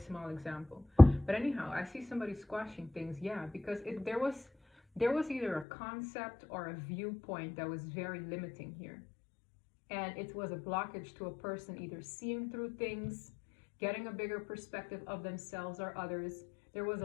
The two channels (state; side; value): drops out; right; at 5.7 s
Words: example. But anyhow, I see somebody squashing things, yeah, because there was either a concept or a viewpoint that was very limiting here. And it was a blockage to a person either seeing through things, getting a bigger perspective of themselves or others. There was